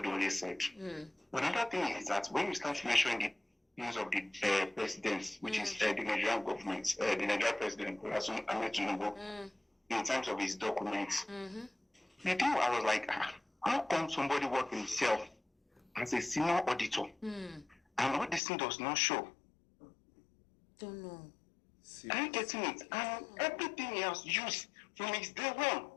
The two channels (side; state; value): right; drops out; at 18.4 s